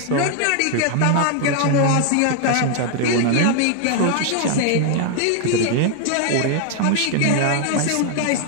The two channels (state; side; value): different; both; correlation 0.00